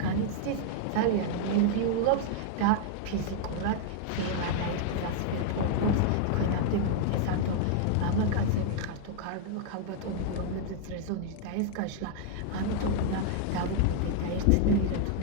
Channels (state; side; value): different; both; correlation 0.00